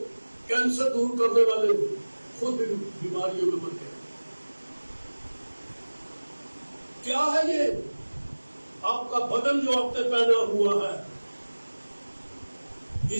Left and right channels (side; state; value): both; inverted; correlation -1.00